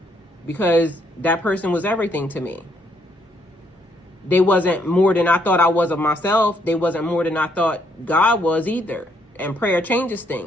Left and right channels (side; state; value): both; normal; correlation 0.71